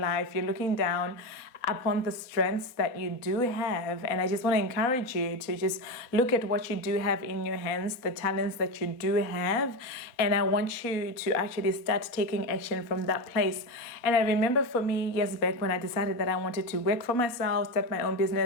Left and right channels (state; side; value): late; right; 4.1 ms